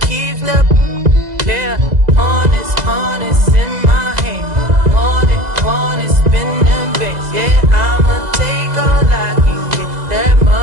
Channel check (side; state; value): left; late; 2.0 ms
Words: keeps the, yeah, honest in my hand. Want it, spin them bits. Yeah, I'ma take all I can get. That